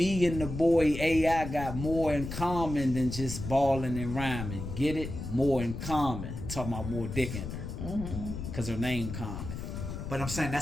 and the boy AI got more in common than just balling and rhyming. Get it? More in common. Talking about more dick in her. Mm-hmm. Cause her name Common. But I'm saying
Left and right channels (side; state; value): left; noise; rumble, 7 dB below the sound